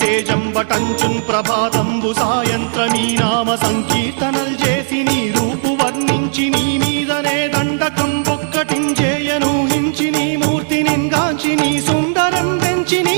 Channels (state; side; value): silent; left; digital silence